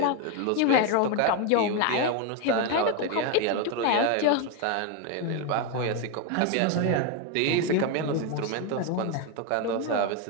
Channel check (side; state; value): both; different; correlation 0.02